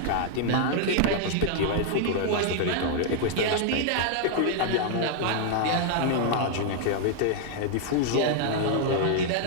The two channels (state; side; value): different; both; correlation 0.00